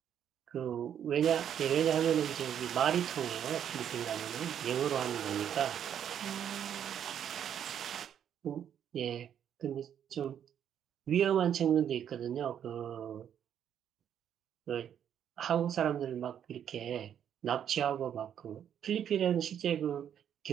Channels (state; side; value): quieter; left; 9.3 dB